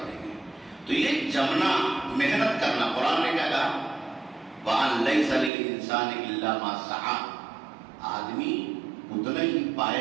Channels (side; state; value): left; drops out; at 5.5 s